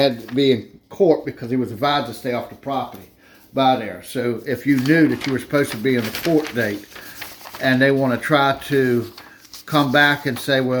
to be in court because he was advised to stay off the property by there. So if you knew that you were supposed to be in the court date and they want to try to come back and say,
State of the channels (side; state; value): both; identical; correlation 1.00